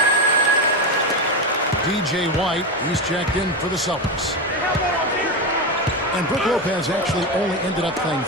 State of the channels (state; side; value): normal; both; correlation 0.15